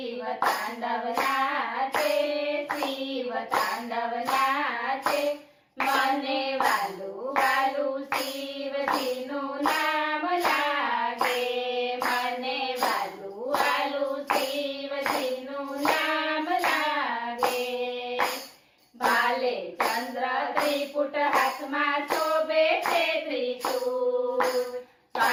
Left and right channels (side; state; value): both; identical; correlation 1.00